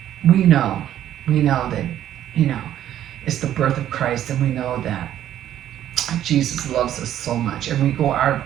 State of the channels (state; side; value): quieter; left; 11.6 dB